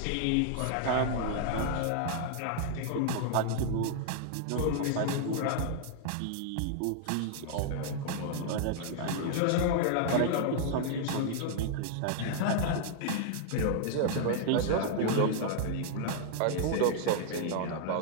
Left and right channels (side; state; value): both; different; correlation -0.01